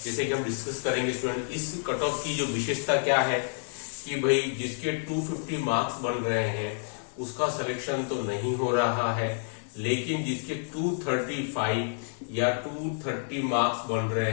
जैसे कि हम डिस्कस करेंगे। स्टूडेंट, इस कट ऑफ की जो विशेषता क्या है कि भाई जिसके 250 मार्क्स बन रहे हैं उसका सिलेक्शन तो नहीं हो रहा है, लेकिन जिसके 235 या 230 मार्क्स बन रहे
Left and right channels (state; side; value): silent; right; 59 dB below the other